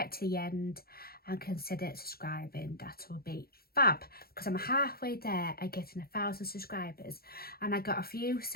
to the end and consider subscribing. That will be fab, because I'm halfway there at getting 1,000 subscribers and I got a few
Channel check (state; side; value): late; right; 0.44 ms